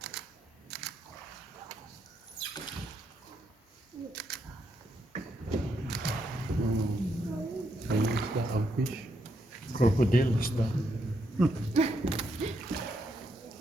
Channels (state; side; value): normal; both; correlation 0.78